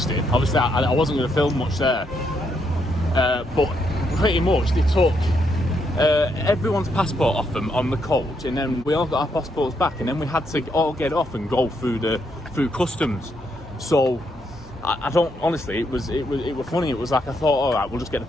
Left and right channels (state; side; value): normal; both; correlation 0.77